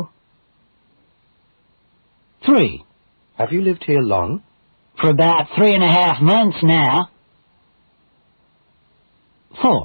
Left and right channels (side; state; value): both; inverted; correlation -1.00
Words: 3. Have you lived here long? For about 3.5 months now.